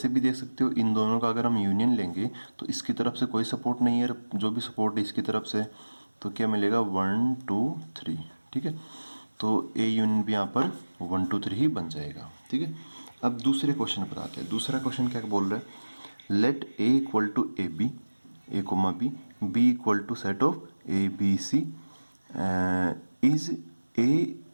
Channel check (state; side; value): inverted; both; correlation -1.00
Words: भी देख सकते हो इन दोनों का अगर हम यूनियन लेंगे तो इसकी तरफ से कोई सपोर्ट नहीं है, जो भी सपोर्ट है इसकी तरफ से, तो क्या मिलेगा 1 2 3। ठीक है, तो ए यूनियन भी यहाँ पर 1 2 3 ही बन जाएगा। ठीक है, अब दूसरे क्वेश्चन पर आते हैं। दूसरा क्वेश्चन क्या बोल रहा है let A equal to A B a comma b B equal to set of a B c is A